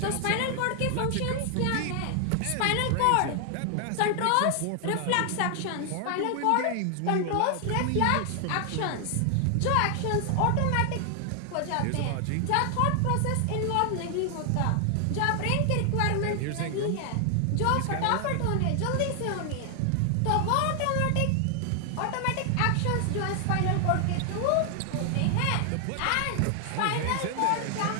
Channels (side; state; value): both; different; correlation 0.00